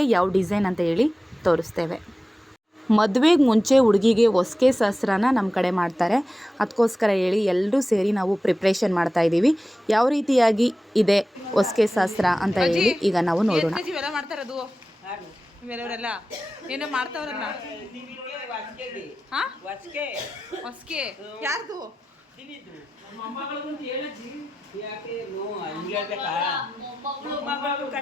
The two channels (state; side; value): normal; both; correlation 0.94